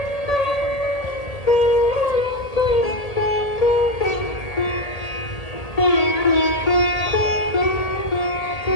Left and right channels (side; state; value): right; late; 1.8 ms